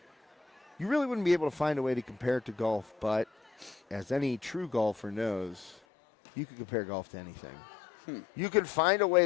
You really wouldn't be able to find a way to compare it to golf, but as any true golfer knows, you could compare golf to anything. You could find a way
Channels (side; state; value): right; drops out; at 5.8 s